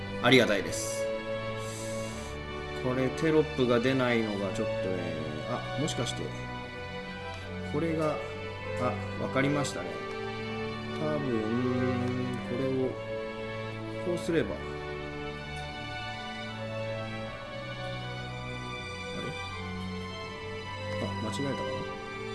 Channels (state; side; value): identical; both; correlation 1.00